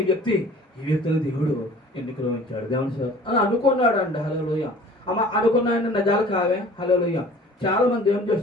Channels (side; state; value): both; normal; correlation 0.47